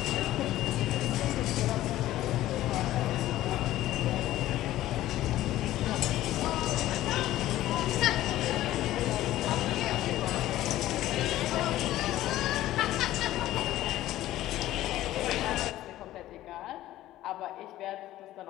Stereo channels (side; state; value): right; quieter; 14.7 dB